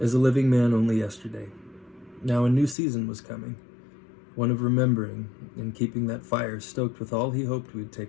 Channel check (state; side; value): drops out; right; at 2.8 s